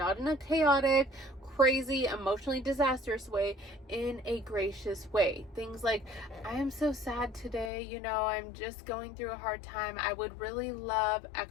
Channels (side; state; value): right; drops out; at 7.7 s